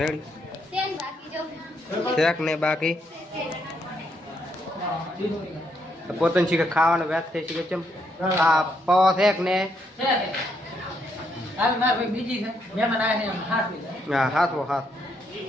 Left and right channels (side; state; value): both; normal; correlation 0.76